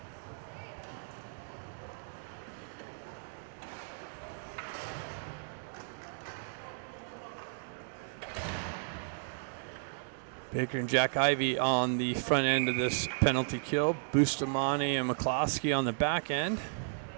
Baker and Jack Ivey on the front end of this penalty kill. Bustamante and McCloskey on the back end.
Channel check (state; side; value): silent; left; digital silence